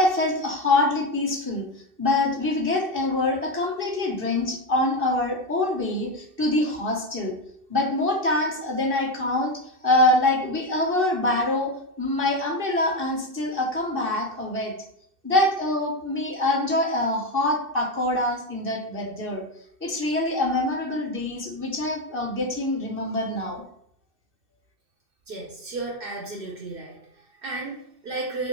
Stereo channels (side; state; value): left; late; 2.6 ms